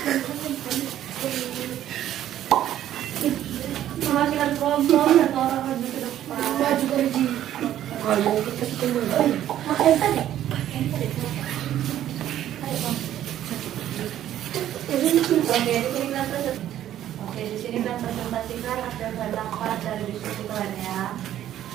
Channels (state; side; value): quieter; left; 11.9 dB